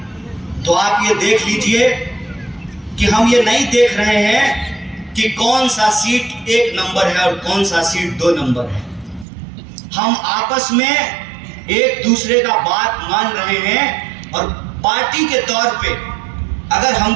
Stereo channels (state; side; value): drops out; left; at 9.2 s